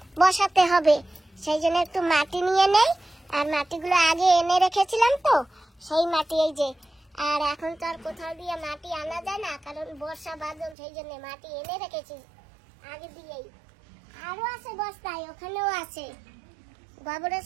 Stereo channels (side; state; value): left; drops out; at 10.8 s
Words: বসাতে হবে। সেই জন্য একটু মাটি নিয়ে নেই, আর মাটিগুলো আগে এনে রেখেছিলাম, তো সেই মাটি এই যে। আর এখন তো আর কোথাও দিয়ে মাটি আনা যায় না, কারণ বর্ষা বাদল, সেই জন্য মাটি এনে রেখেছি আগে দিয়েই। আরো আছে বস্তায়, ওখানেও আছে গোবরের